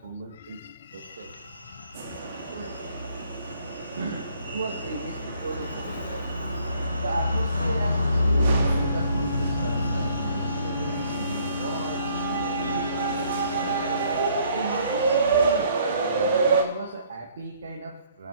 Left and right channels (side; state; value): both; inverted; correlation -0.63